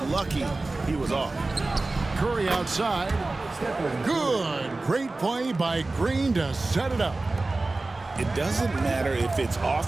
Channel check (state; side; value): quieter; left; 3.2 dB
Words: lucky he was off. Curry outside. Good. Great play by Green to set it up. It doesn't matter if it's